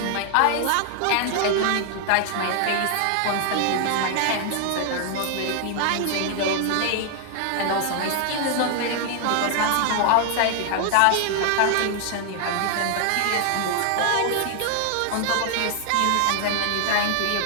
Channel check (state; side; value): different; both; correlation 0.00